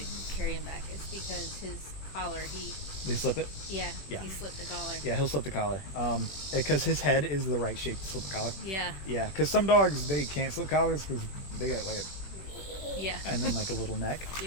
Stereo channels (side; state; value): right; late; 21 ms